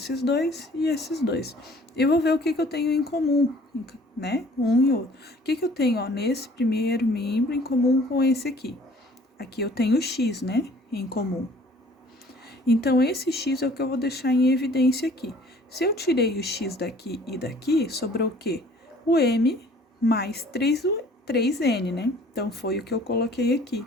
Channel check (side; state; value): both; normal; correlation 0.53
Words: dois e esses dois. E vou ver o que eu tenho em comum, né? Um e outro. O que eu tenho, ó, nesse primeiro membro em comum com esse aqui? Aqui eu tenho x, né? Em comum. Então, esse x é o que eu vou deixar em evidência aqui. Se eu tirei o x daqui e daqui, sobrou o quê? O m mais 3n, né? Então, foi o que eu coloquei aqui.